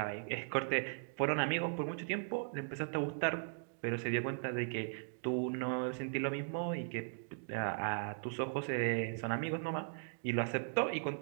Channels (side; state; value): left; silent; digital silence